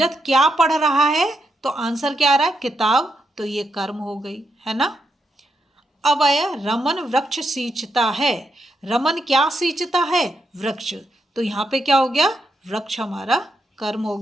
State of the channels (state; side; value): normal; both; correlation 0.82